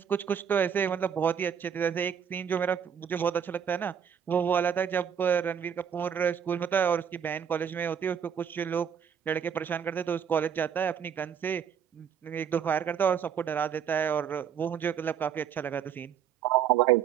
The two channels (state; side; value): quieter; left; 8.0 dB